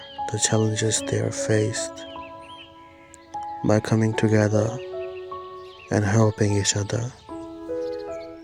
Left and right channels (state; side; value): identical; both; correlation 1.00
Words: the challenges they are faced, by coming together and helping each other,